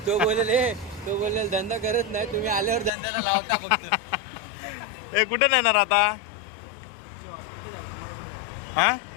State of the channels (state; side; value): drops out; right; at 2.9 s